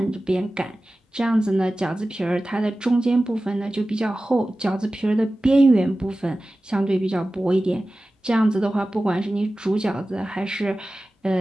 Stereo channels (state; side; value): normal; both; correlation 0.96